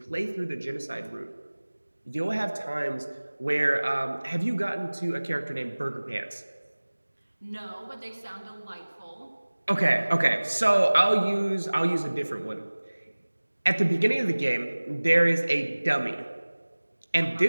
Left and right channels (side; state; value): both; inverted; correlation -1.00